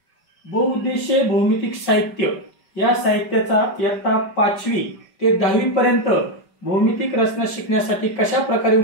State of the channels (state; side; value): late; right; 5.2 ms